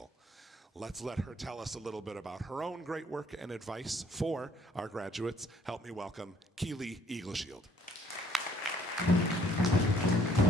Let's let her tell us a little bit about her own great work and advice for our graduates. Help me welcome Keely Eagleshield.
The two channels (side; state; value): both; normal; correlation 0.62